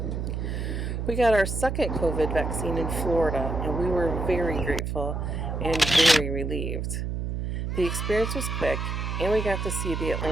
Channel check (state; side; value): noise; right; hum, 3 dB below the sound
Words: We got our second COVID vaccine in Florida, and we were very grateful and very relieved. The experience was quick, and we got to see the